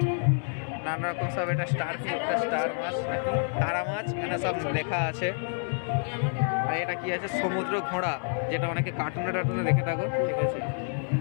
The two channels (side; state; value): right; silent; digital silence